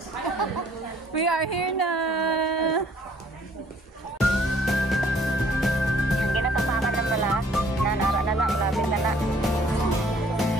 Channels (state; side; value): normal; both; correlation 0.59